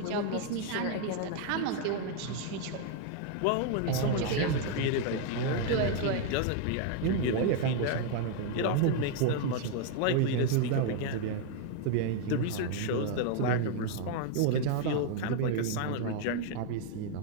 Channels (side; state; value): both; different; correlation 0.00